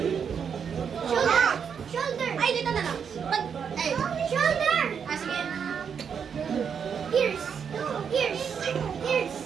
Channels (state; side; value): quieter; left; 7.0 dB